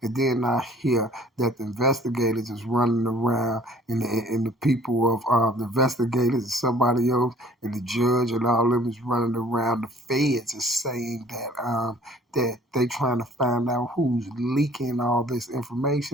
And then I hear that the investigators is running around and the people of the investigators and somebody else and the judge and all of them is running around. The feds is saying that they trying to find out who's leaking all this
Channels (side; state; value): both; normal; correlation 0.53